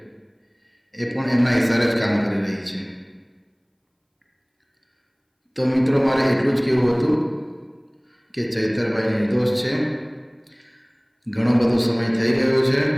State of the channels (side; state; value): both; identical; correlation 1.00